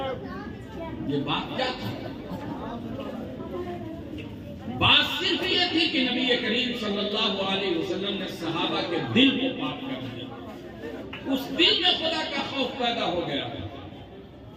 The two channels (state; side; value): identical; both; correlation 1.00